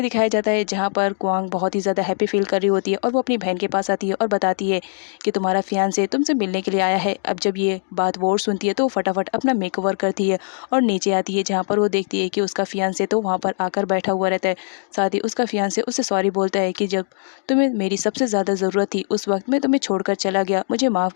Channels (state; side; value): silent; right; digital silence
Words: दिखाया जाता है जहाँ पर क्वांग बहुत ही ज़्यादा हैप्पी फील कर रही होती है और वो अपनी बहन के पास आती है और बताती है कि तुम्हारा फियांसे तुमसे मिलने के लिए आया है। अब जब ये बात वोर सुनती है तो वो फटाफट अपना मेकओवर करती है और नीचे आती है जहाँ पर वो देखती है कि उसका फियांसे तो वहाँ पर आकर बैठा हुआ रहता है। साथ ही उसका फियांसे उससे सॉरी बोलता है कि जब तुम्हें मेरी सबसे ज़्यादा ज़रूरत थी उस वक्त मैं तुम्हें छोड़कर चला गया, मुझे माफ़